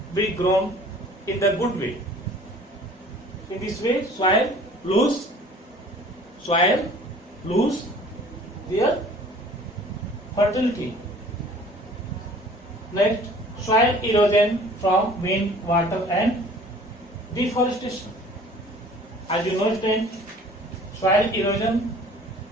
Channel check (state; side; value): normal; both; correlation 0.49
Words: be grown in the good way. In this way, soil lose their fertility. Next, soil erosion from wind, water, and deforestation. As you know, soil erosion